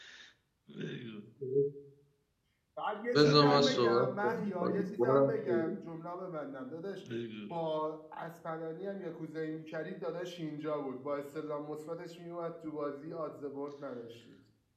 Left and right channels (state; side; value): identical; both; correlation 1.00